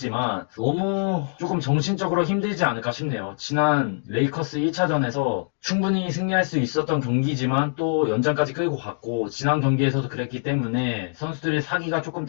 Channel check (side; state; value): right; silent; digital silence